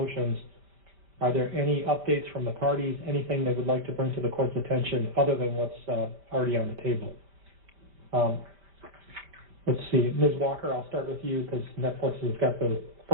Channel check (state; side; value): late; left; 5.0 ms